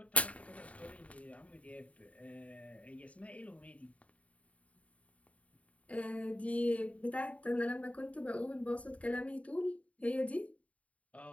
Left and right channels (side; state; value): right; late; 0.066 ms